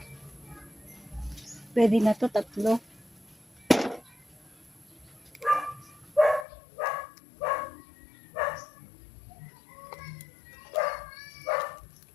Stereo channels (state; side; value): drops out; right; at 6.5 s